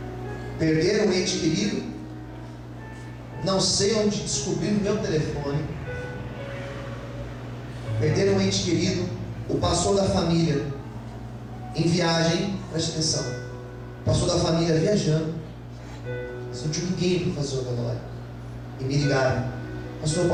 Perderam um ente querido, não sei onde descobriram o meu telefone. Perderam um ente querido, o pastor da família em viagem, preste atenção, o pastor da família viajando, não tinha ninguém para fazer o velório, e me ligaram: pastor,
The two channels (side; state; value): both; identical; correlation 1.00